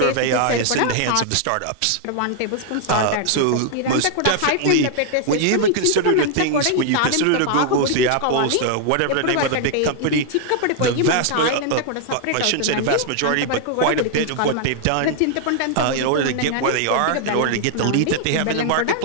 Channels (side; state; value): both; different; correlation 0.00